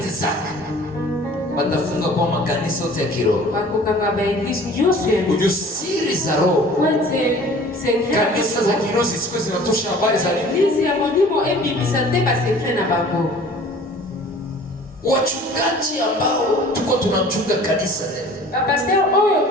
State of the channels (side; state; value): both; normal; correlation 0.47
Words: zake, watafunga kwa makanisa yote ya kiroho, ujusiri za roho. Kanisa za kiroho zisiku zinatosha habari za wachungaji ambao tuko tunachunga kanisa leo,